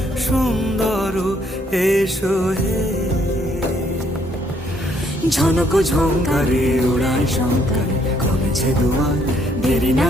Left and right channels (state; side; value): normal; both; correlation 0.68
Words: সুন্দর এসো হে। ঝনক ঝঙ্কারে উড়ায় শঙ্কার কমেছে দুয়ার দেরি